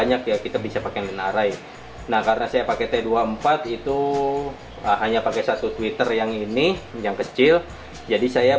ya, kita bisa pakai line array. Nah, karena saya pakai T24 itu hanya pakai satu tweeter yang ini, yang kecil. Jadi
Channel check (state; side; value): identical; both; correlation 1.00